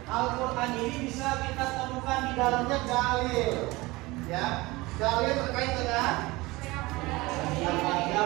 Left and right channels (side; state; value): left; quieter; 21.5 dB